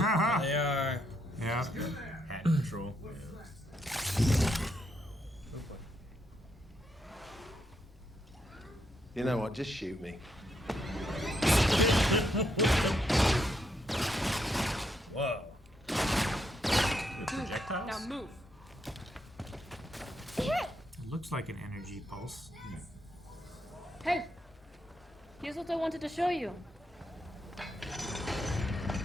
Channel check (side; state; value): both; normal; correlation 0.78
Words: Yeah. Hat patrol. You know what? Just shoot me. Whoa. With projectiles? Now move. It looks like an energy pulse. Hey! Here's what I wanted to show you.